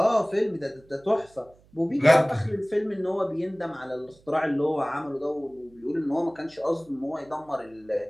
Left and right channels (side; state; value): right; noise; hum, 29 dB below the sound